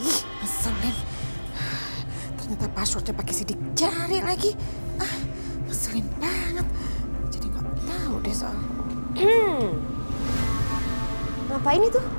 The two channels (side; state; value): both; inverted; correlation -1.00